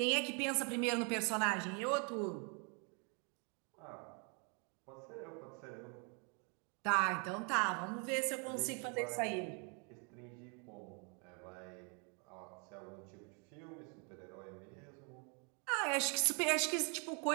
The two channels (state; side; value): quieter; left; 36.0 dB